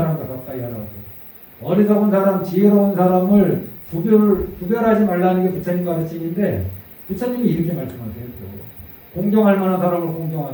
가까이 하라고. 어리석은 사람, 지혜로운 사람을 구별하지 말라는 게 부처님 가르침인데 부처님이 이렇게 말씀하세요. 공경할 만한 사람을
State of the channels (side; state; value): both; identical; correlation 1.00